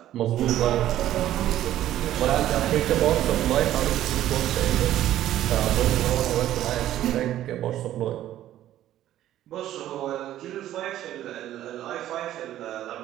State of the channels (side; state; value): left; quieter; 12.9 dB